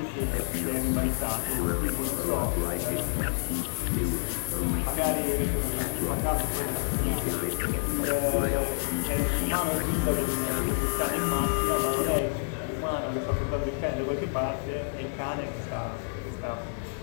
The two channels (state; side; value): silent; right; digital silence